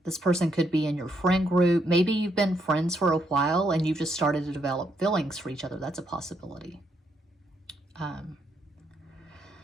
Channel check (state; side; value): normal; both; correlation 0.76